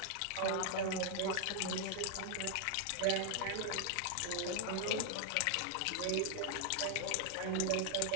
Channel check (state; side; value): different; both; correlation 0.00